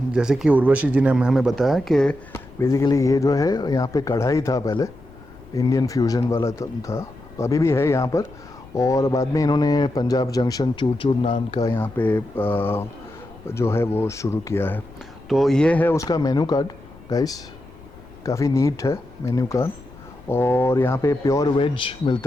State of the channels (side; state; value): left; noise; rumble, 22 dB below the sound